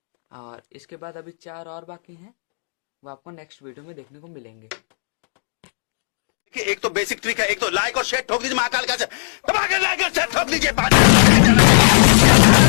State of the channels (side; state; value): right; silent; digital silence